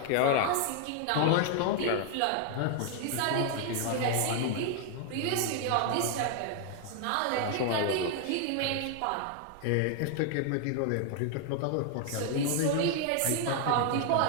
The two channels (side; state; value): both; different; correlation 0.00